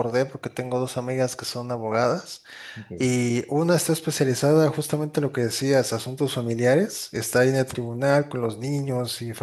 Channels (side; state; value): both; identical; correlation 1.00